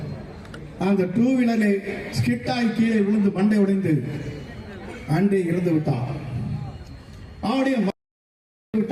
அந்த 2 வீலரில் ஸ்கிட்டாய் கீழே விழுந்து மண்டை உடைந்து அன்றே இறந்து விட்டார். அவருடைய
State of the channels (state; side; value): identical; both; correlation 1.00